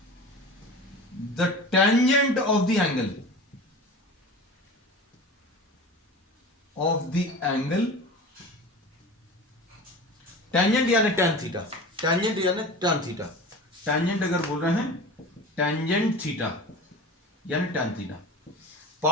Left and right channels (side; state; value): both; normal; correlation 0.35